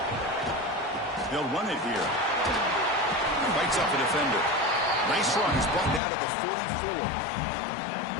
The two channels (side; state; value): right; drops out; at 6.0 s